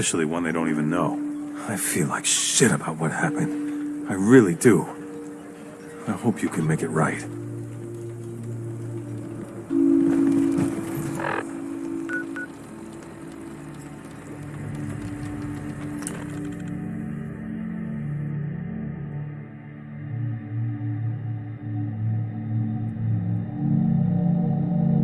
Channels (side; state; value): both; identical; correlation 1.00